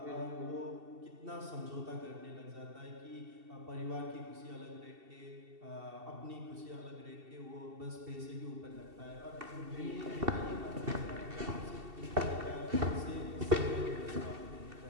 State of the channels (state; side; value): late; left; 2.7 ms